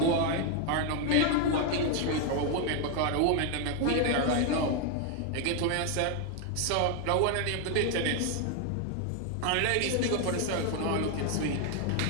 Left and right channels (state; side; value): different; both; correlation 0.01